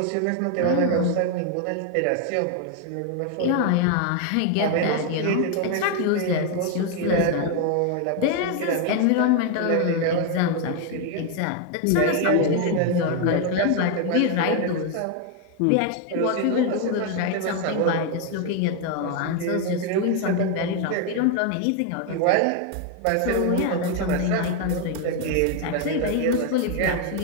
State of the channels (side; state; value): both; different; correlation 0.01